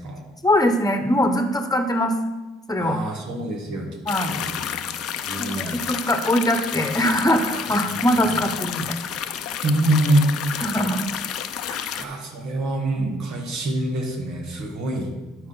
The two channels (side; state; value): both; normal; correlation 0.65